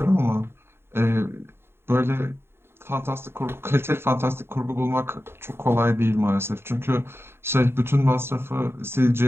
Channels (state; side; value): late; left; 0.11 ms